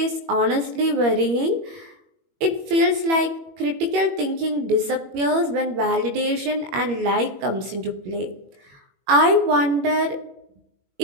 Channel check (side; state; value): left; late; 21 ms